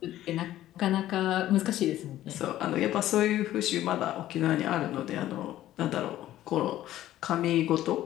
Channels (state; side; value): quieter; right; 13.7 dB